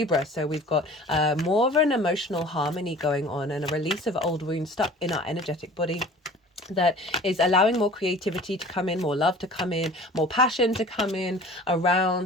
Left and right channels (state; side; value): normal; both; correlation 0.44